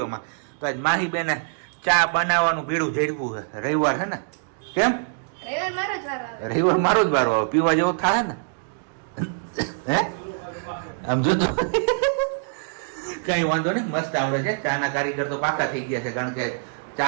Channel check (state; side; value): silent; left; digital silence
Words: તો આજ માહીબેને ચા બનાવવાનું ભીડું ઝડપું છે. રવિવાર છે ને? કેમ રવિવાર મારો જ વારો આવે, પીવા જેવો થાય ને? હે આમ જોતો કઈ વાંધો નહીં, મસ્ત આવડે છે. ચા ના કારીગર તો પાકા થઈ ગયા છે, કારણ કે